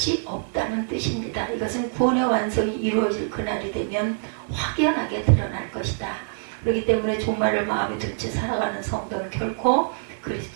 없다는 뜻입니다. 이것은 구원의 완성이 이루어질 그날이 되면 확연하게 드러날 것이다. 그렇기 때문에 종말을 마음에 둔 채 살아가는 성도는 결코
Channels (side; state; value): left; silent; digital silence